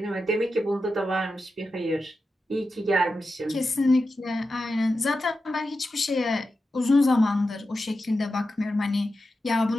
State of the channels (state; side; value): normal; both; correlation 0.90